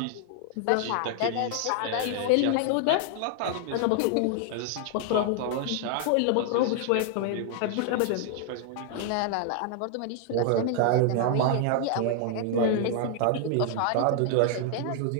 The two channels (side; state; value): both; different; correlation 0.00